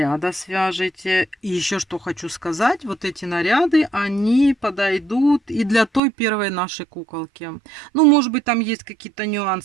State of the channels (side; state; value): left; drops out; at 6.0 s